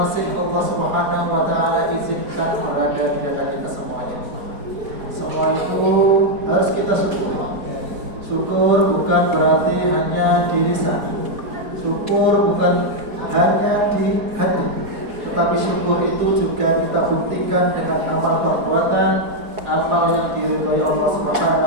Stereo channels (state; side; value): late; left; 4.5 ms